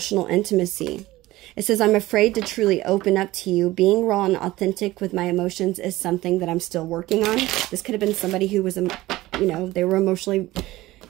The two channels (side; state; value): left; quieter; 17.6 dB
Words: intimacy. It says, I'm afraid to truly open up to you. Being raw and authentic with my emotions is something that I'm still working on. This could have been somebody who was, you know, they were emotionally